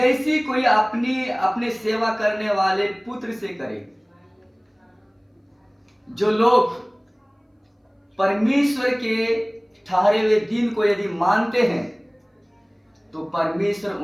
कोई अपने सेवा करने वाले पुत्र से करे। जो लोग परमेश्वर के ठहरे हुए दिन को यदि मानते हैं तो परमेश्वर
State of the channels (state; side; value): identical; both; correlation 1.00